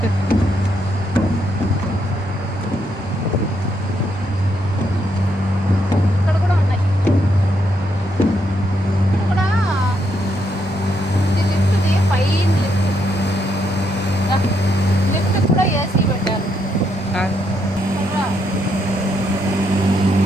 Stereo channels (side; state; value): both; normal; correlation 0.77